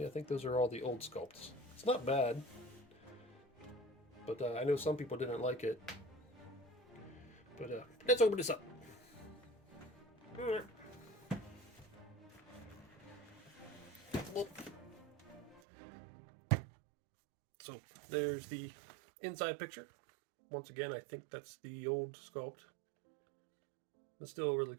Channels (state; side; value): drops out; left; at 15.6 s